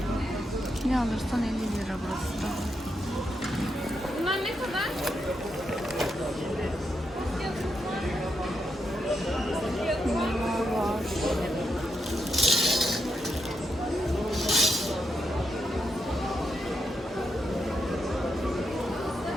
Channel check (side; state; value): both; normal; correlation 0.83